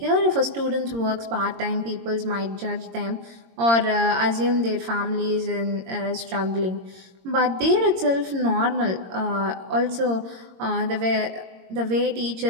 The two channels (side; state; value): left; late; 22 ms